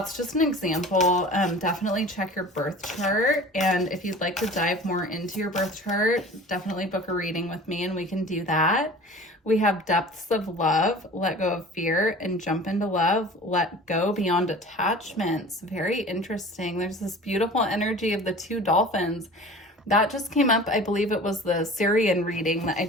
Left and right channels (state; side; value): normal; both; correlation 0.41